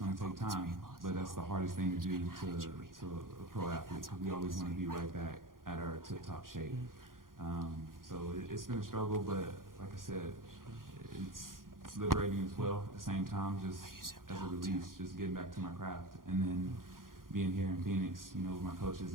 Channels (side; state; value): left; late; 0.91 ms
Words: to take time. But that's the hardest thing to do to a pro athlete, because we always want to be right back at our tip-top shape. So it's been a struggle, but like I said, it's liberating as well at the same time, just as a release, just getting back to my craft. And then being here in Phoenix, you know, with my coaches